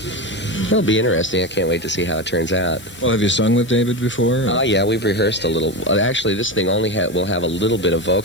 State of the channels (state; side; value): normal; both; correlation 0.19